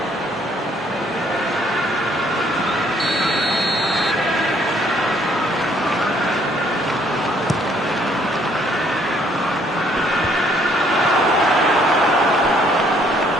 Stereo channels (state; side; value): normal; both; correlation 0.65